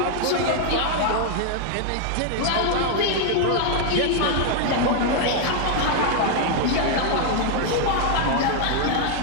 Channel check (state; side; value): different; both; correlation 0.00